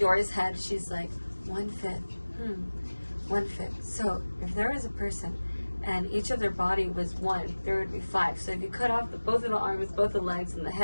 head, she's like 1/5. 1/5. So if there was a person and each of their body was 1, there would be 5. So if you cut off both of the arms, both the legs, and the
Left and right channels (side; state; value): both; inverted; correlation -1.00